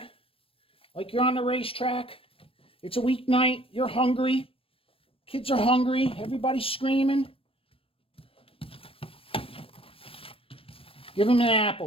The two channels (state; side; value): late; right; 0.27 ms